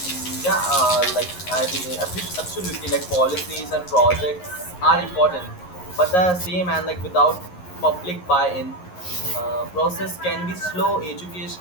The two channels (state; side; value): late; right; 11 ms